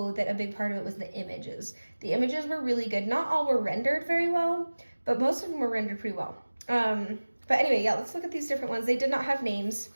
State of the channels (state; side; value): inverted; both; correlation -1.00